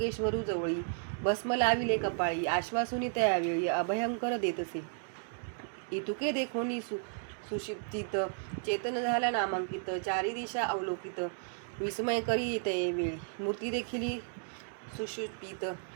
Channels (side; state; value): left; silent; 55 dB below the other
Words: जवळी भस्म लाविले कपाळी आश्वासुनी त्यावेळी अभयंकर देतसे इतुके देखोनी सुषिप्तित चेतन झाला नामांकित चारी दिशा अवलोकित विस्मय करी येते वेळी मूर्ती देखील सुषुप्तित